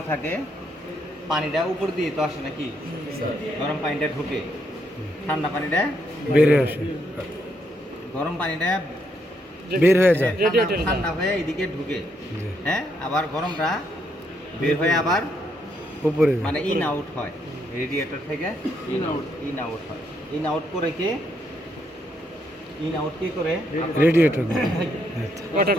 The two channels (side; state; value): both; normal; correlation 0.75